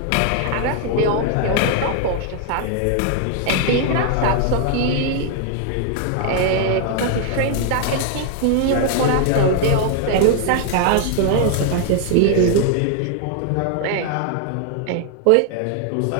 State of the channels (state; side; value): different; both; correlation 0.00